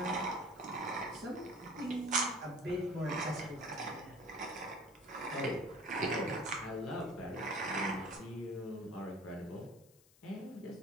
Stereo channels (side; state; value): left; noise; hiss, 26 dB below the sound